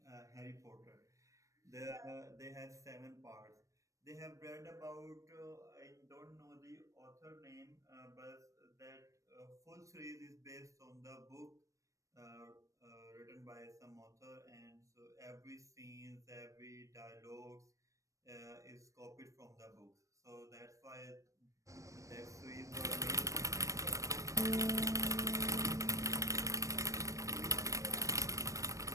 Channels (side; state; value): left; late; 0.16 ms